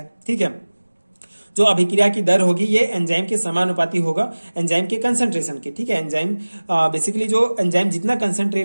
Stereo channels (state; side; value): inverted; both; correlation -1.00